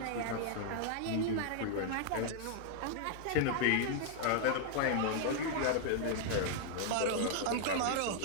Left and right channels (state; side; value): different; both; correlation -0.01